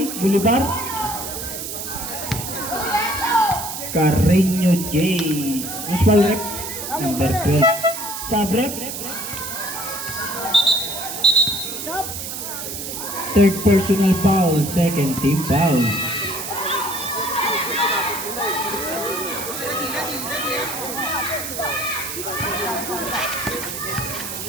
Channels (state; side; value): noise; right; hiss, 6 dB below the sound